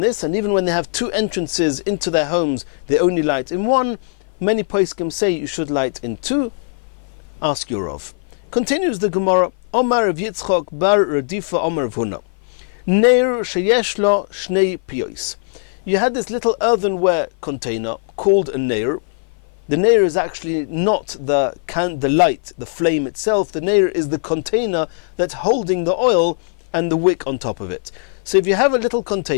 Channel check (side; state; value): right; silent; 55 dB below the other